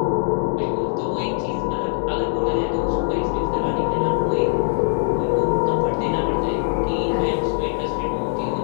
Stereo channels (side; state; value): right; silent; digital silence